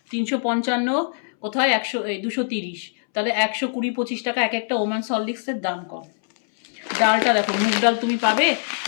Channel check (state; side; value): silent; right; 63 dB below the other